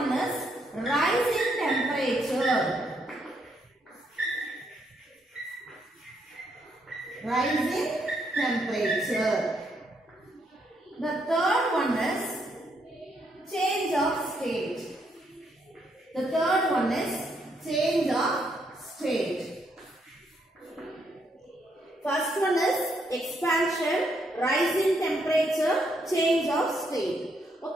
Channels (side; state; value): both; normal; correlation 0.75